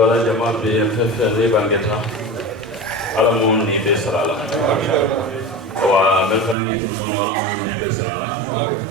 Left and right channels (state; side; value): drops out; left; at 6.6 s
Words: جماعة بفف ريبانجتا على موني بسرالا ومن ترملو على موني بسرالا